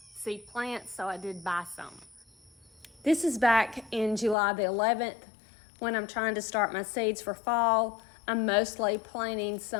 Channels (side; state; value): right; drops out; at 4.4 s